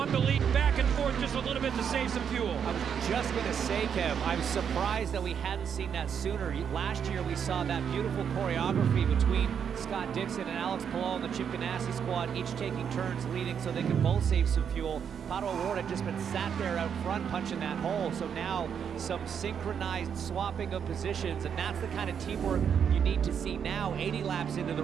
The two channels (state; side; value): quieter; left; 7.7 dB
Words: the lead back and forth just a little bit to save some fuel. I was just going to say, Kev, I'm surprised that we hadn't seen that sooner. Last year, we saw that beautiful choreography between Scott Dixon and Alex Palou and the Chip Ganassi squad, each taking turns leading so they could both save some fuel. Pato O'Ward had just been sat there out front punching that hole, so now some synchronized swapping of positions, and that's the kind of teamwork you need to see now, 80 laps into the